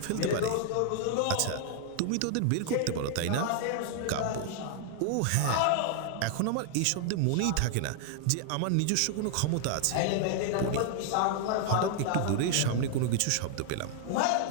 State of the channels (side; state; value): both; different; correlation 0.00